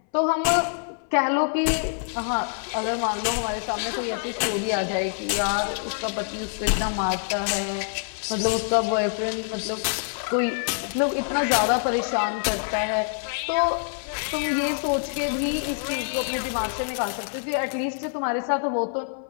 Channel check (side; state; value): right; silent; 61 dB below the other